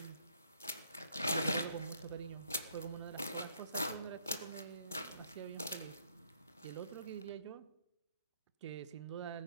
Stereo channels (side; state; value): both; inverted; correlation -0.65